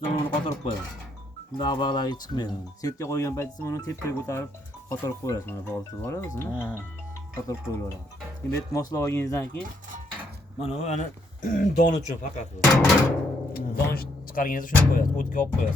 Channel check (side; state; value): both; normal; correlation 0.73